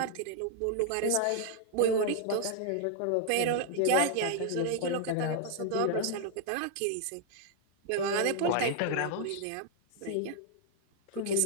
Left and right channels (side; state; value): both; different; correlation 0.00